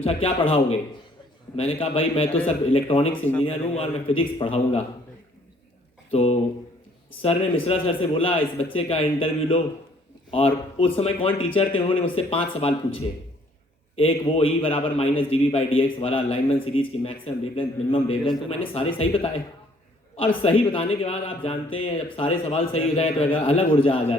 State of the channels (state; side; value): normal; both; correlation 0.62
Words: क्या पढ़ाओगे। मैंने कहा भाई मैं तो सर इलेक्ट्रॉनिक्स इंजीनियर हूँ और मैं फिजिक्स पढ़ाऊँगा। तो सर ने मिश्रा सर से बोला इस बच्चे का इंटरव्यू लो, और उस समय कौन टीचर थे उन्होंने मुझसे 5 सवाल पूछे। एक वो E बराबर -dV/dx वाला लाइनमैन सीरीज की मैक्सिमम वेवलेंथ मिनिमम वेवलेंथ, तो मैंने सारे सही बताए। और सही बताने के बाद आप जानते हैं जब सारे सवाल सही हो जाए तो अलग ऊर्जा आ